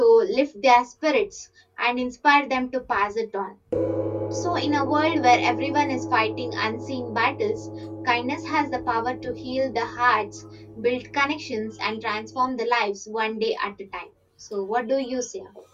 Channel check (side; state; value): both; identical; correlation 1.00